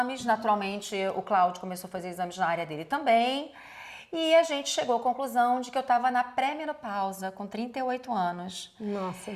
naturalmente o Cláudio começou a fazer exames na área dele também, e a gente chegou à conclusão de que eu estava na pré-menopausa, com 38 anos. Nossa,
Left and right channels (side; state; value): both; identical; correlation 1.00